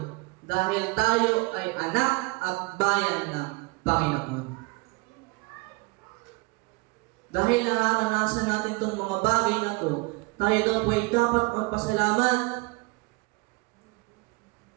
dahil tayo ay anak at bayan ng Panginoon. Dahil nararanasan natin itong mga bagay na to, tayo daw po ay dapat magpasalamat.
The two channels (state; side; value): quieter; left; 27.4 dB